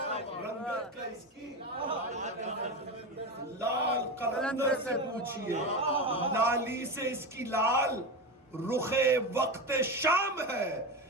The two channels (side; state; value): both; normal; correlation 0.20